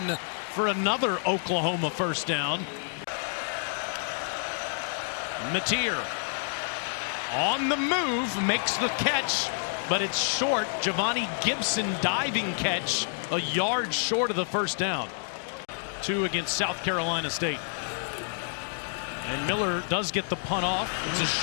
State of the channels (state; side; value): silent; right; digital silence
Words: for another Oklahoma first down. Mateer on the move, makes the catch, but it's short. Javani Gibson diving catch, a yard short of the first down. 2 against South Carolina State. And Miller does get the punt off. It's a